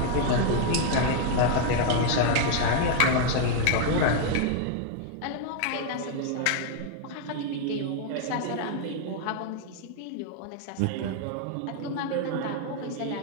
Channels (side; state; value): both; different; correlation 0.00